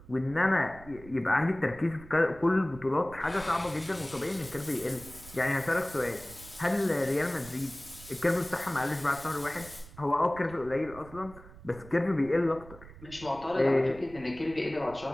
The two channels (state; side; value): noise; right; rumble, 18 dB below the sound